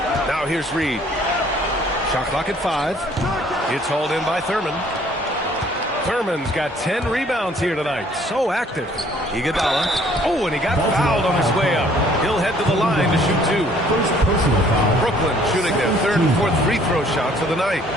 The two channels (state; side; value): normal; both; correlation 0.59